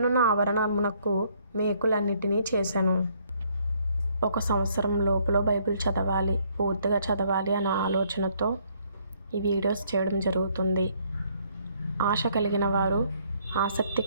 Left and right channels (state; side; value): inverted; both; correlation -0.66